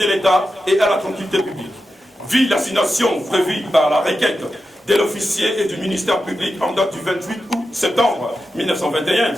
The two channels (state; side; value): normal; both; correlation 0.90